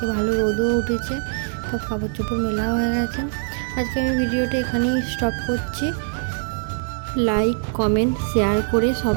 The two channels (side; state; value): left; silent; digital silence